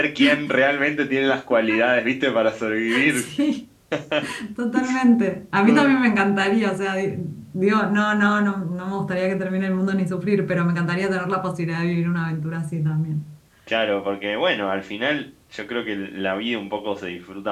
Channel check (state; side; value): identical; both; correlation 1.00